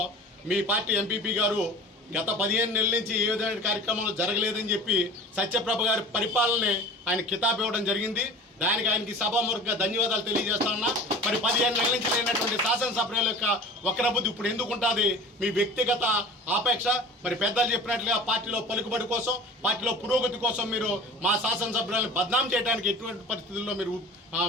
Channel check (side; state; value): both; normal; correlation 0.40